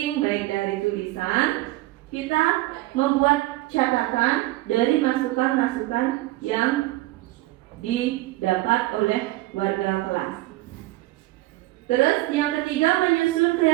baik dari tulisan, kita membuat catatan dari masukan-masukan yang didapat oleh warga kelas. Terus yang ketiga, menyusun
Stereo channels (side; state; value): left; quieter; 18.6 dB